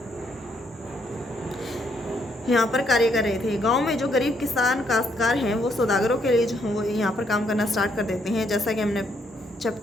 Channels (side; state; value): both; normal; correlation 0.73